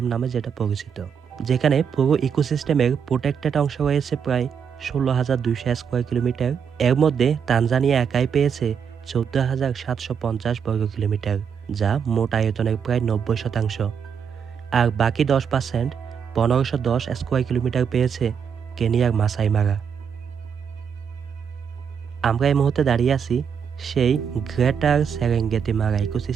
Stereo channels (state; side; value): quieter; left; 7.1 dB